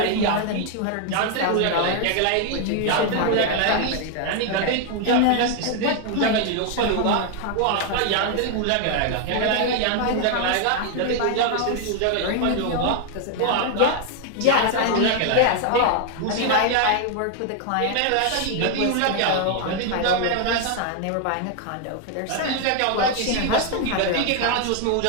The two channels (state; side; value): different; both; correlation 0.00